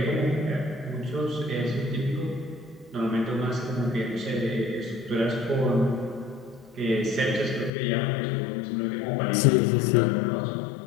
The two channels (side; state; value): right; drops out; at 7.7 s